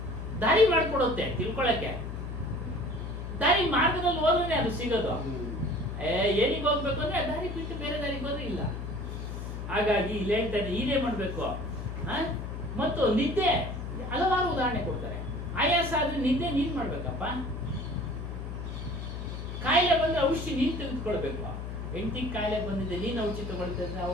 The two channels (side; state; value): left; noise; hum, 6 dB below the sound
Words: ದಾರಿ ಮಾಡ್ಕೊಡುತ್ತೆ ತಿಳ್ಕೊಳಕ್ಕೆ. ದಾರಿ ಮಾರ್ಗದಲ್ಲಿ ಹೋದ್ರೆ ಅದು ಸಿಗೋದು. ಏನಿಗೆ ಹೋಗ್ಬೇಕು ಅಂದ್ರೆ ದಾರಿ ಬಿಟ್ಟು ಬೇರೆ ದಾರಿಗೆ ಹೋದ್ರೆ ಇಲ್ಲ. ಹಾಗಾಗಿ ಇಲ್ಲಿ ಹೇಳ್ತಾನೆ ಇದೇ ಮಾಡ್ಬೇಕು. ಮತ್ತು ನಿದ್ದೆ, ಹಲವಾರು ಉದಾಹರಣೆ ಕೊಡ್ತಾರೆ. ಆಯಾಸ ಆದ್ರೆ ನಿದ್ದೆ ನೀನ್ ಮಾಡ್ಬೇಕಪ್ಪ. ಕಾಯಿಲೆ ಬಂದ್ರೆ ಔಷಧಿ ನೀನ್ ತೆಗೆದುಕೊಳ್ಬೇಕು. ಹೆಂಡತಿಗೆ ಕಾಯಿಲೆ ಬಂದಿದೆ, ನೀನ್ ಔಷಧಿ ತಗೊಳ್ತಿದ್ರೆ